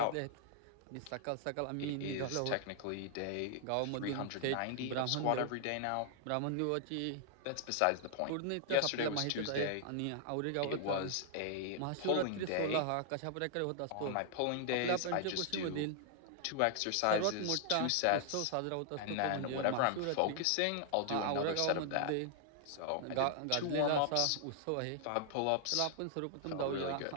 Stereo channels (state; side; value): different; both; correlation -0.01